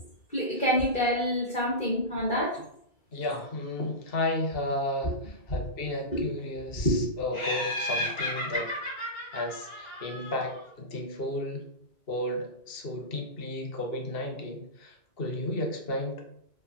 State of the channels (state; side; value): late; right; 2.7 ms